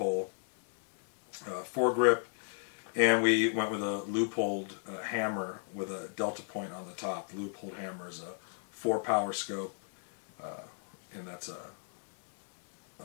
foregrip, and we went with a loopholed hammer with a delta point on the top. The loopholed hammer is a 4-power scope, and that's a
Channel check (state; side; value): silent; right; digital silence